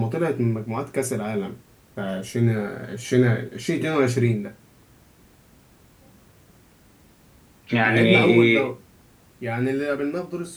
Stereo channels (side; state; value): both; identical; correlation 1.00